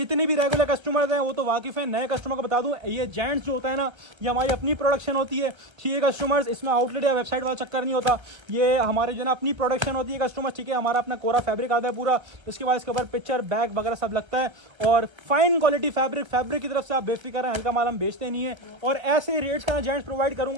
भी रेगुलर कस्टमर्स हैं वो तो वाकिफ़ हैं, नए कस्टमर को बता दूं, ये जेंट्स जो होता है ना, ये हमारी अपनी प्रोडक्शन होती है। ठीक है कस्टमर्स, इसमें आउटलेट या वेबसाइट वाला चक्कर नहीं होता, ये हमारे जो ना अपनी प्रोडक्शन होती है कस्टमर। ठीक है, हमारा अपना कोरा फैब्रिक आता है पूरा, इसके बाद इसके ऊपर पिक्चर बैग वगैरह सब लगता है। और फाइन क्वालिटी फैब्रिक की तरफ से आप बेफिक्र हैं, हल्का माल हम बेचते नहीं है। और ऐसे रेट्स का जेंट्स प्रोवाइड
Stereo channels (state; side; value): late; left; 1.3 ms